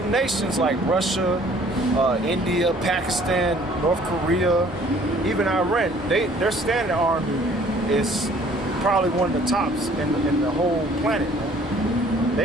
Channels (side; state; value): both; normal; correlation 0.56